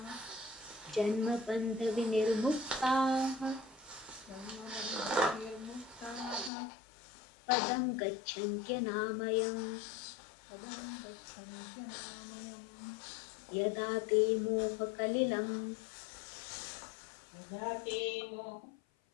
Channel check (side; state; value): right; drops out; at 6.5 s